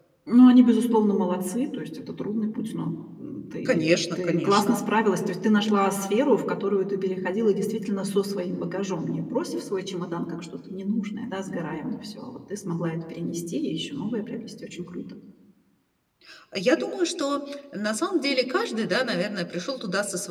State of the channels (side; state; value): both; identical; correlation 1.00